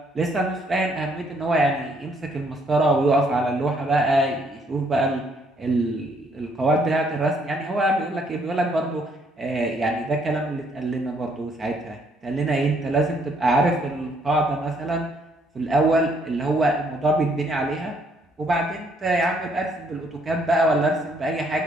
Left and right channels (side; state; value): both; normal; correlation 0.68